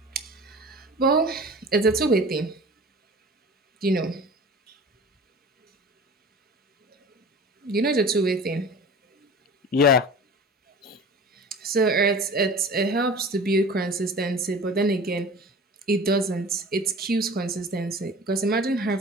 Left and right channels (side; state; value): both; normal; correlation 0.40